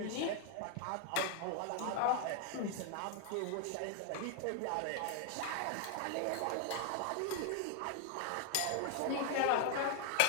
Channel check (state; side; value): different; both; correlation 0.00